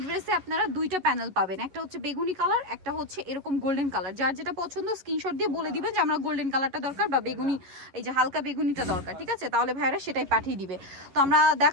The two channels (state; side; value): late; left; 11 ms